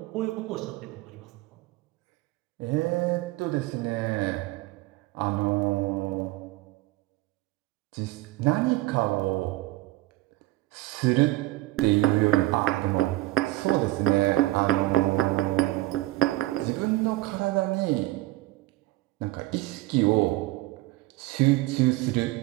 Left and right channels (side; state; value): left; quieter; 18.6 dB